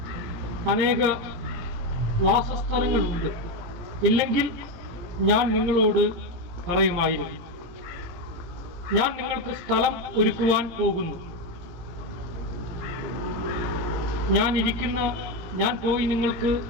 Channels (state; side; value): late; left; 17 ms